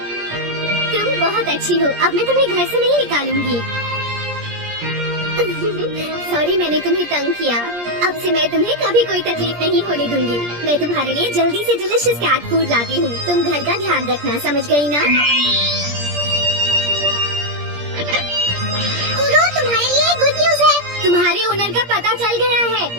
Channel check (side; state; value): left; late; 17 ms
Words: तुम बहुत अच्छी हो। अब मैं तुम्हें घर से नहीं निकालूंगी। सॉरी मैंने तुम्हें तंग किया। अब से मैं तुम्हें कभी कोई तकलीफ नहीं होने दूंगी। मैं तुम्हारे लिए जल्दी से डिलीशियस कैट फूड लाती हूँ। तुम घर का ध्यान रखना, समझ गई ना? कुरो, तुम्हारे लिए गुड न्यूज है। तुम्हारे ओनर का पता चल गया है।